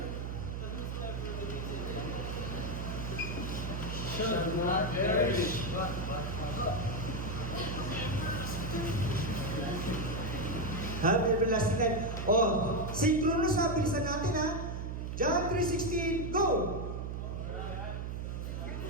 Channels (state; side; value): noise; right; hum, 4 dB below the sound